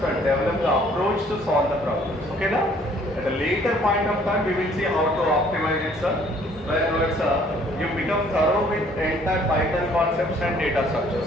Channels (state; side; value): normal; both; correlation 0.60